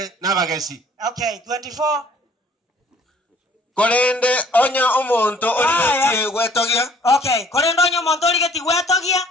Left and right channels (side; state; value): both; normal; correlation 0.57